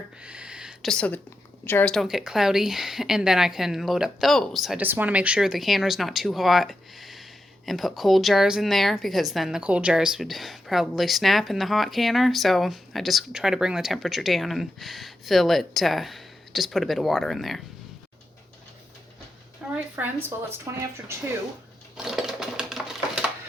just so the jars don't get cloudy, and then I can load up those. I just want to make sure the canner's not too hot and put cold jars in there, because then the cold jars would probably snap in the hot canner. So I just try to bring the temperature down and fill it, just put a bit of water in there. Alright friends, well it's 20 after 2.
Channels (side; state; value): both; normal; correlation 0.87